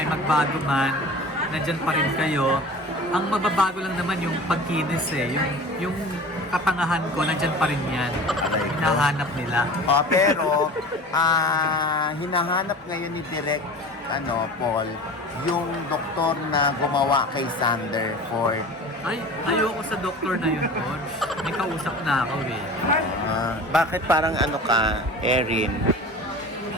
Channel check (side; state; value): both; normal; correlation 0.38